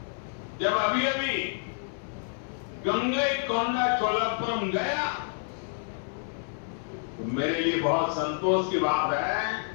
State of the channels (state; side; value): silent; right; 55 dB below the other